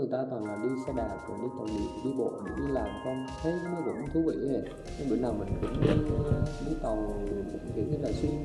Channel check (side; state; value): both; identical; correlation 1.00